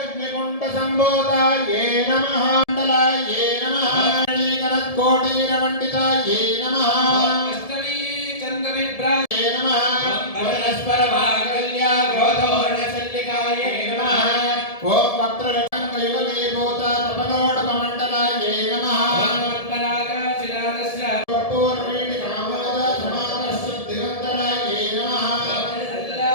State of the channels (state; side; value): late; right; 1.7 ms